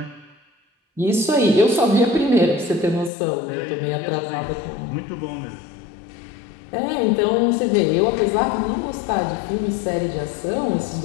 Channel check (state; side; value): drops out; right; at 3.1 s